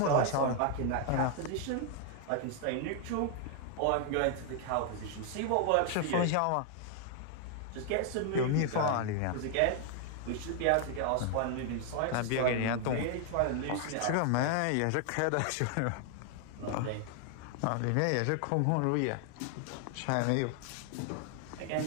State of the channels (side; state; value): both; different; correlation 0.00